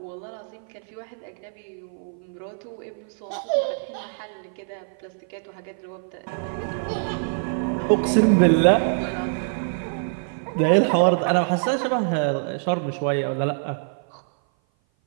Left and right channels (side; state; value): left; silent; 56 dB below the other